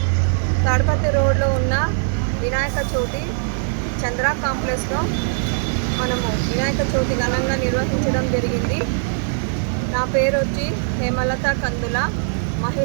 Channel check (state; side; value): silent; left; digital silence